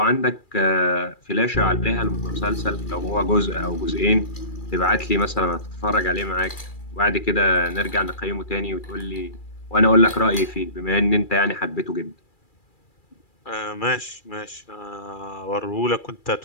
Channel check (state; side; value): late; right; 2.4 ms